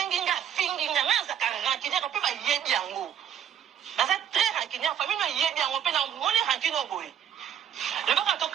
finginga, na za ka rankini ko pe ba yebi yango. Na za très rankini famille na yebi yango pe na ngone rankini boy. Le baka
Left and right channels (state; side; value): quieter; left; 9.4 dB